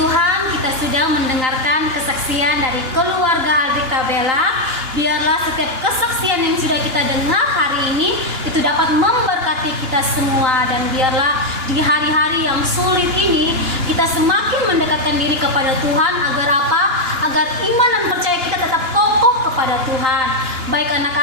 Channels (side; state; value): left; late; 2.9 ms